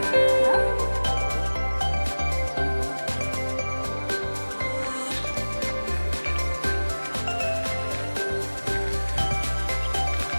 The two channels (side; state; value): both; inverted; correlation -1.00